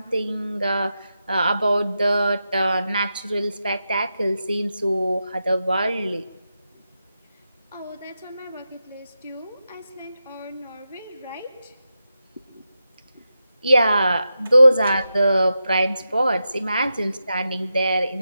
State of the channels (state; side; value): inverted; both; correlation -0.89